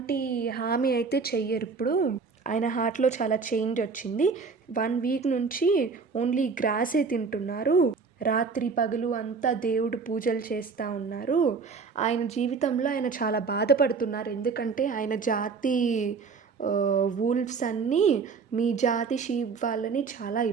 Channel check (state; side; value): quieter; left; 5.0 dB